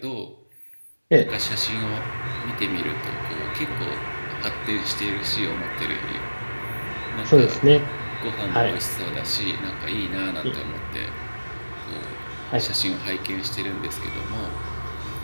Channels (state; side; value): inverted; both; correlation -1.00